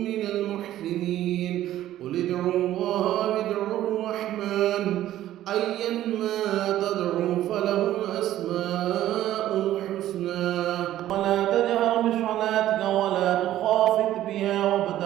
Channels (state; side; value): quieter; left; 13.3 dB